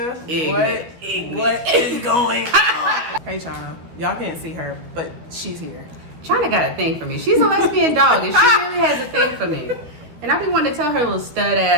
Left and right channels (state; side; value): late; left; 13 ms